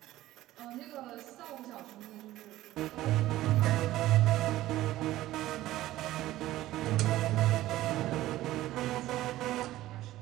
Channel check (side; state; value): left; quieter; 15.6 dB